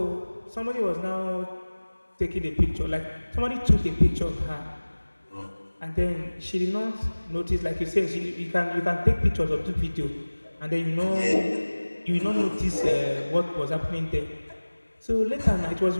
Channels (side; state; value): both; inverted; correlation -1.00